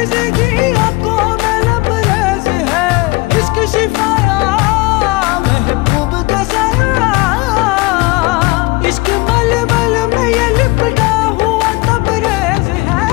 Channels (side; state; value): right; quieter; 24.1 dB